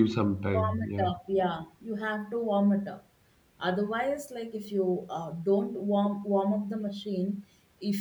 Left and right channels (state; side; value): identical; both; correlation 1.00